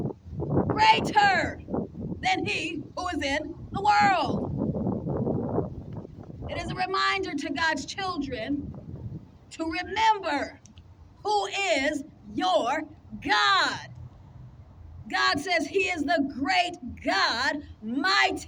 than he who is in the world. It is a reminder to God's children to remember who is your God. God says he is the great God,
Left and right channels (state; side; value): identical; both; correlation 1.00